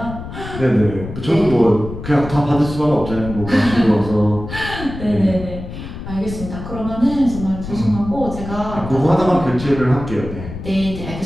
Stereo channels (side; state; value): left; noise; rumble, 10 dB below the sound